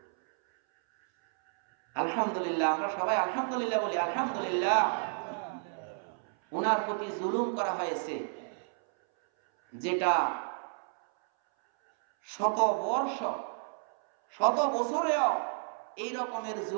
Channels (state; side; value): silent; left; 57 dB below the other